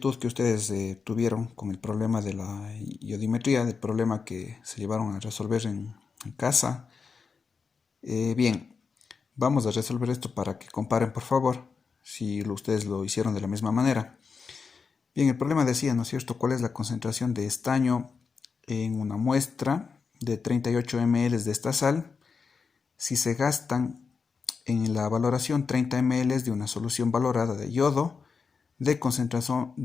que ustedes tuvieron con el problema de la iodimetría, del problema que se llevaron a resolver en casa, bien, vamos a resolver esto para que comparen, por favor, si ustedes lo hicieron de la misma manera. Bien, el problema decía, ¿no es cierto?, cuál es la concentración de estaño en una muestra de 38 ml de esta sal si se gastan en la valoración 30 ml de una solución valorada de yodo de concentración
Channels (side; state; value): right; quieter; 5.3 dB